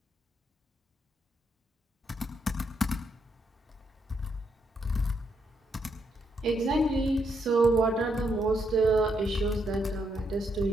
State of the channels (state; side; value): normal; both; correlation 0.77